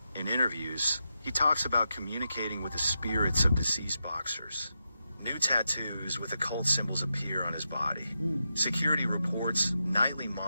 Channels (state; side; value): inverted; both; correlation -0.87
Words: In interviews, he talks about communicating with the spirits of deceased boxers. New tattoos with occult symbols appear on his body. Security reports nightly